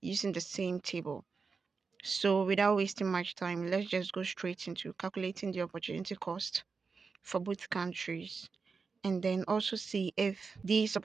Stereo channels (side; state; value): left; quieter; 4.9 dB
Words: using the same table. So without wasting much time, let's just go straight into calculating the opportunity cost for both countries and then also see if these